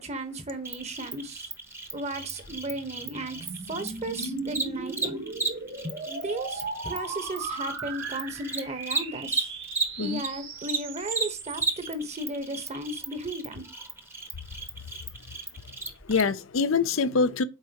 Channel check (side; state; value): both; normal; correlation -0.03